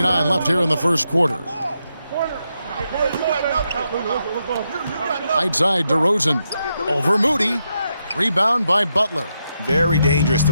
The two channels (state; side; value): inverted; both; correlation -0.83